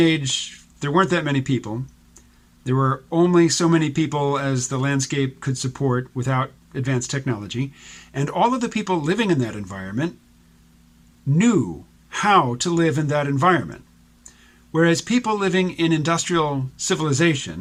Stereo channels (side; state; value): both; identical; correlation 1.00